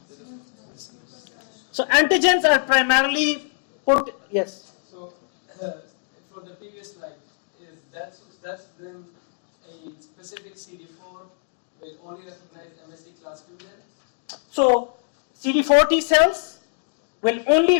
So antigens are primarily put, yes. So, for the previous slide, is that's then a specific CD4 will only recognize MSC class 2 then? So CD4 T cells will only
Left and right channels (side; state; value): right; silent; 62 dB below the other